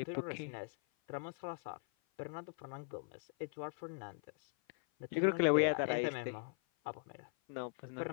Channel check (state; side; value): silent; right; 51 dB below the other